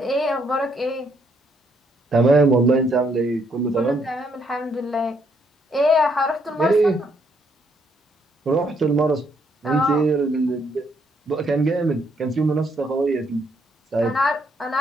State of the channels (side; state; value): both; normal; correlation 0.72